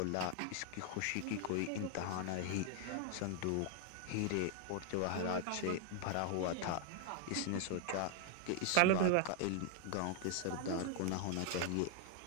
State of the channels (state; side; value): different; both; correlation 0.00